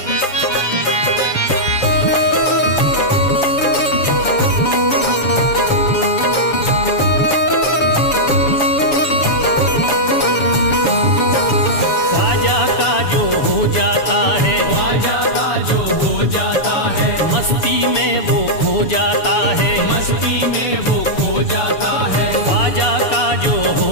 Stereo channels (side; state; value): right; late; 6.9 ms